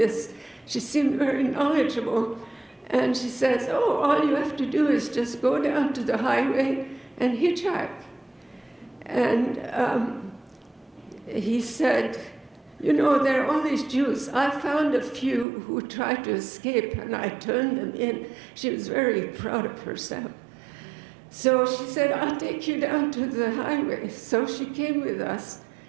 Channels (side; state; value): left; drops out; at 15.5 s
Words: She seemed very knowledgeable. And she says, "Oh, all you have to do is just go down to the highway and hitchhike." And he said, "You know, there are all these Jews. I found a few who tried to escape, and I turned them in." She was very proud of herself. So she said, "I'll take you down to the highway." So she came with us.